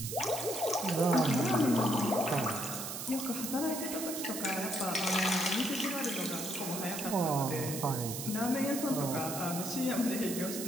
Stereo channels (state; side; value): noise; right; hiss, 6 dB below the sound